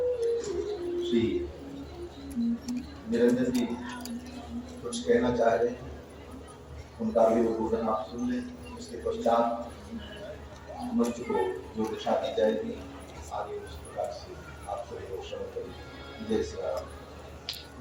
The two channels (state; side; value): identical; both; correlation 1.00